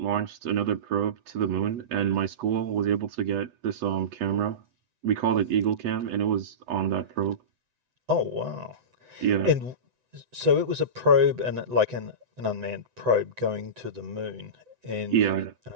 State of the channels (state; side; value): late; left; 7.9 ms